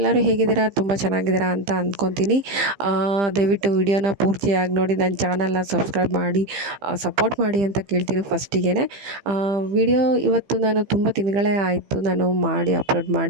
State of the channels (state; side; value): late; left; 15 ms